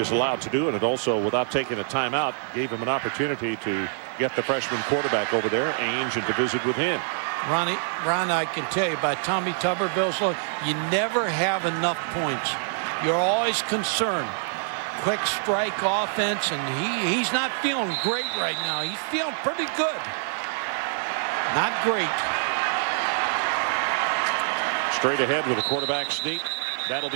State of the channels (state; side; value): silent; left; digital silence